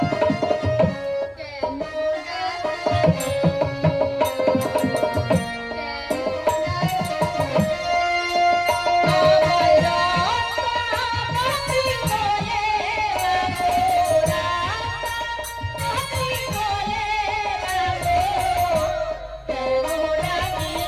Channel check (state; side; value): identical; both; correlation 1.00